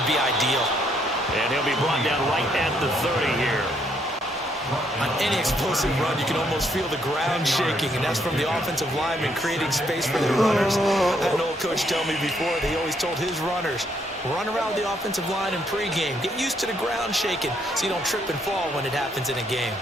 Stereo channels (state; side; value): normal; both; correlation 0.72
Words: be ideal. And he'll be brought down right at the 30 here. On any explosive run, you can almost feel the ground shaking, and that's from the offensive linemen creating space for their runners. I had an old coach tell me before, they always told his runners, run around the offensive line in pregame. Get used to the ground shaking so you don't trip and fall when it happens in a game.